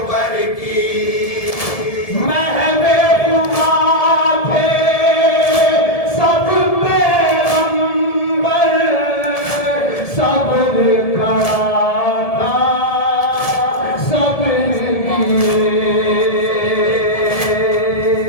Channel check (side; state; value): right; late; 1.7 ms